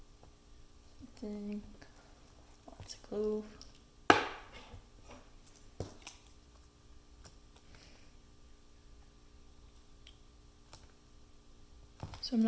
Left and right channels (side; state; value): both; identical; correlation 1.00